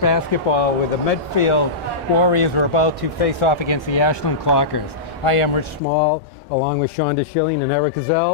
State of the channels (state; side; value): drops out; right; at 5.8 s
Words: where the Medfield Warriors are about to face off against the Ashland Clockers. I am Rich Small, along with Shonda Schilling and Eric